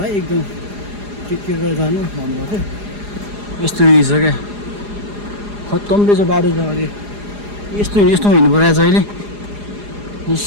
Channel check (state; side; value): late; left; 4.9 ms